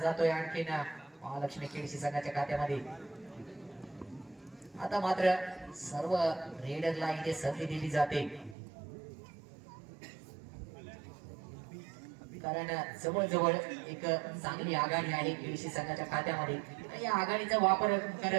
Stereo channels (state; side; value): drops out; left; at 8.6 s